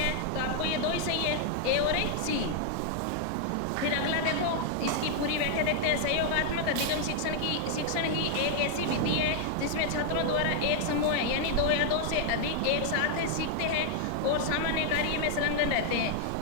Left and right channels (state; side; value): different; both; correlation 0.00